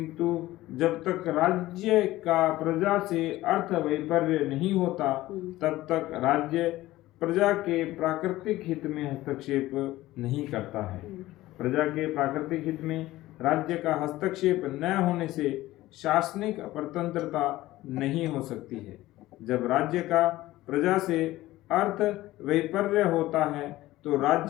जब तक राज्य का प्रजा से अर्थ वैपर्य नहीं होता, तब तक राज्य प्रजा के प्राकृतिक हित में हस्तक्षेप नहीं करता है। प्रजा के प्राकृतिक हित में राज्य का हस्तक्षेप न होने से शासनिक परतंत्रता नहीं हो सकती है। जब राज्य का प्रजा से अर्थ वैपर्य होता है, तो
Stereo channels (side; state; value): right; quieter; 16.8 dB